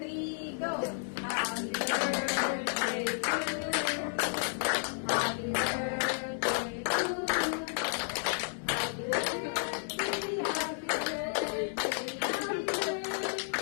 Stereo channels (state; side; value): silent; right; digital silence